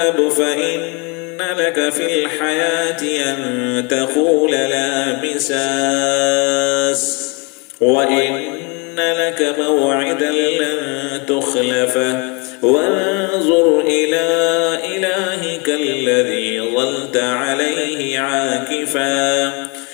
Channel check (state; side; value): quieter; right; 31.2 dB